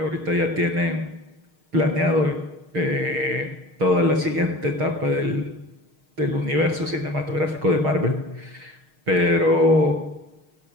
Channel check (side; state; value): left; late; 6.5 ms